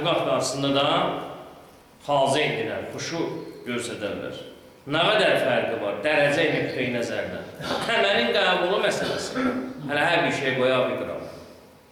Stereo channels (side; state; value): both; identical; correlation 1.00